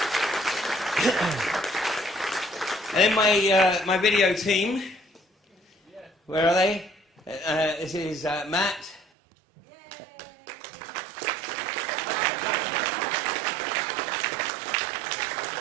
And then my video team. Where are they? This is Matt.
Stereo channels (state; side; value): drops out; left; at 9.1 s